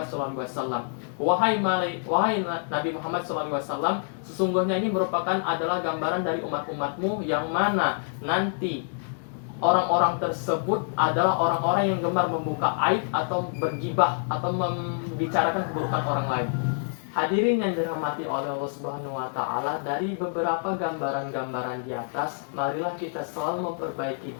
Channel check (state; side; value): silent; right; digital silence